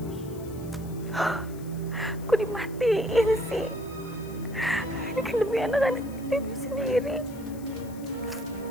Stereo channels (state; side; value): noise; left; hiss, 21 dB below the sound